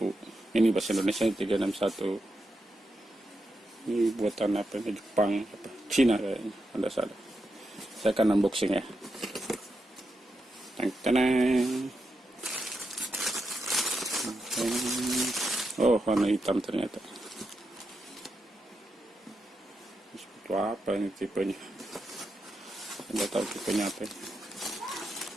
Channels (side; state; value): both; normal; correlation 0.85